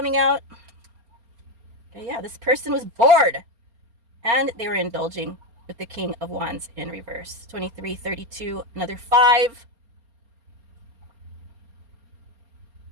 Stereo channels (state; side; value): late; left; 4.3 ms